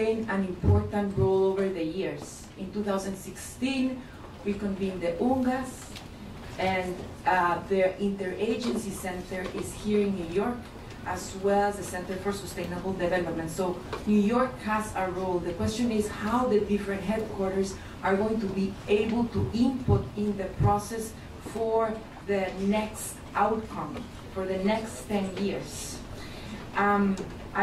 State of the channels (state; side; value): identical; both; correlation 1.00